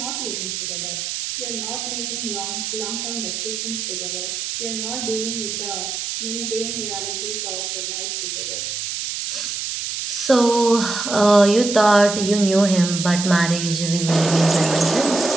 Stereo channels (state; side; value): noise; right; hiss, 4 dB below the sound